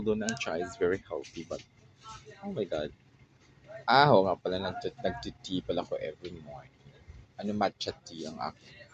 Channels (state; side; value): identical; both; correlation 1.00